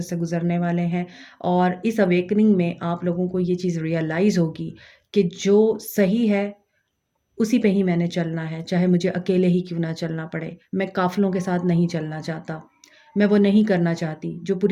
से गुज़रने वाले हैं और इस अवेकनिंग में आप लोगों को ये चीज़ रियलाइज़ होगी कि जो सही है उसी पे ही मैंने चलना है, चाहे मुझे अकेले ही क्यों ना चलना पड़े। मैं काफ़िलों के साथ नहीं चलना चाहता। मैं वो नहीं करना चाहती जो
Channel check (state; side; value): identical; both; correlation 1.00